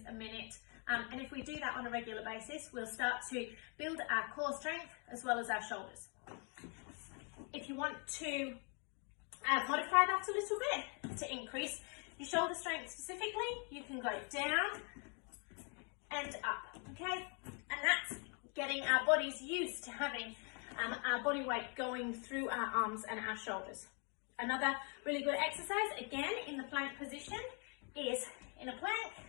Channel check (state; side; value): quieter; right; 37.5 dB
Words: a minute, and if we do that on a regular basis, we'll start to build our core strength as well as our shoulders. If you want to modify that a little bit to increase your shoulder strength specifically, you can go down and up, okay? And that's getting our bodies used to having our body weight going through our arms and our shoulders. Another really good exercise, again in the plank position, is in a plank,